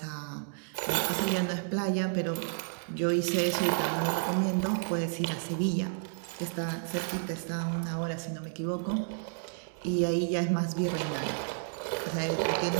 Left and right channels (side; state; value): left; silent; digital silence